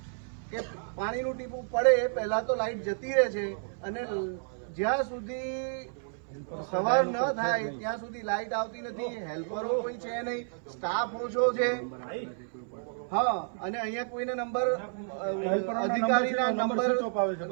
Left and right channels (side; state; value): left; silent; 57 dB below the other